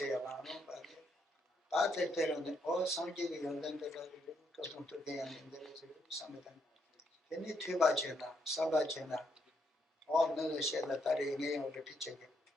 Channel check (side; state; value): both; normal; correlation 0.76